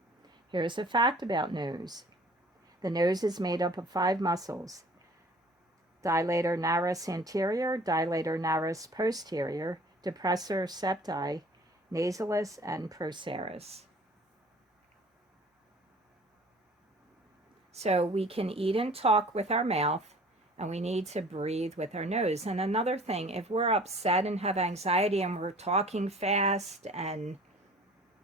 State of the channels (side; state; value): both; normal; correlation 0.49